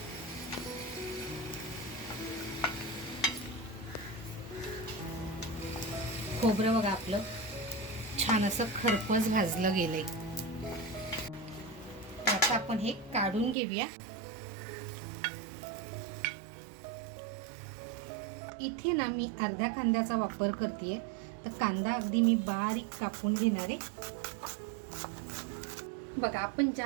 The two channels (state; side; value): drops out; left; at 13.6 s